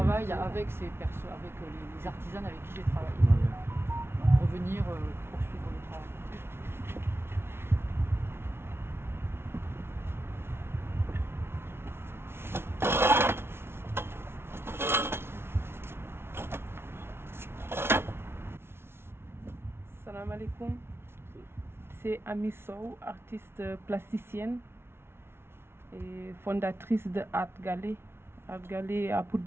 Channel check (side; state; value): left; late; 0.12 ms